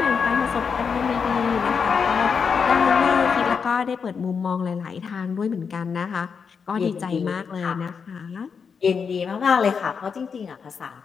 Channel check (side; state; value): right; quieter; 6.0 dB